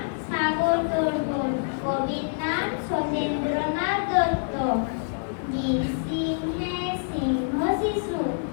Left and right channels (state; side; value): silent; right; digital silence